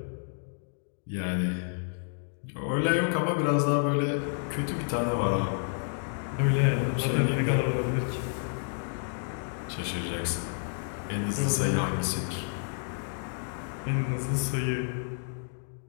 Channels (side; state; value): right; silent; digital silence